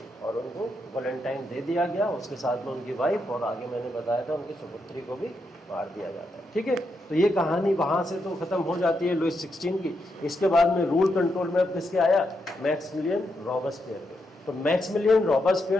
और उनको वैलेंटाइन दे दिया गया, उसके साथ में उनकी वाइफ, और आगे मैंने बताया था उनकी सुपुत्री को भी मार दिया जाता है। ठीक है, तो ये कहानी वहाँ से तो ख़त्म हो जाती है लुइस 16 की। इसके बाद में रूल कंट्रोल में अब किसके आया, मैक्समिलियन रॉबस्पियर के। तो मैक्समिलियन रॉबस्पियर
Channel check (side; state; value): both; normal; correlation 0.82